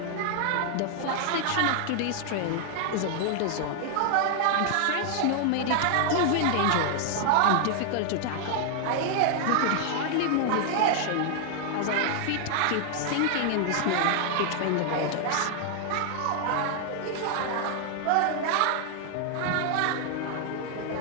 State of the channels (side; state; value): both; different; correlation 0.00